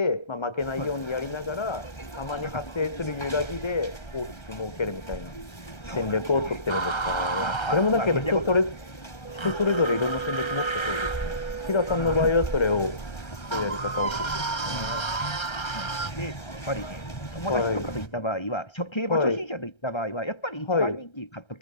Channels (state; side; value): late; right; 1.3 ms